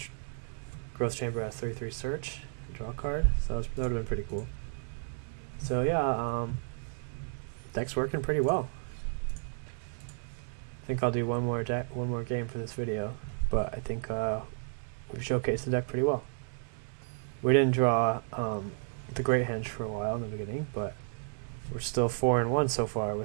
Growth Chamber at 3/3 search, and draw a card. So that would have been pretty cool. So yeah, deck's working pretty well. I think I'll do one more game for this video, but I think we've showcased the deck pretty well. We didn't draw the Great Henge for a while in the beginning, but we're still 4-1 so far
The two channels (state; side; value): silent; left; 56 dB below the other